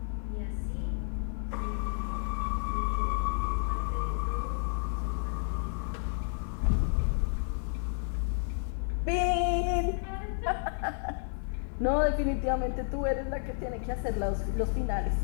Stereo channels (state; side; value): silent; right; digital silence